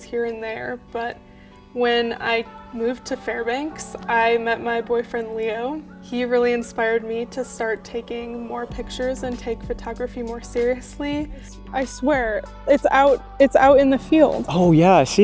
here and there, but when I moved to Fairbanks, I met my boyfriend Leo. He really inspired me to start taking more pictures and take photography more seriously. I swear, it's out in the field. Oh yeah, I see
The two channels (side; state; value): both; identical; correlation 1.00